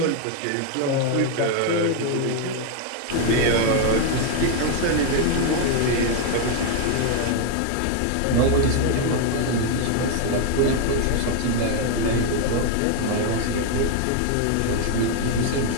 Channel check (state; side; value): different; both; correlation 0.01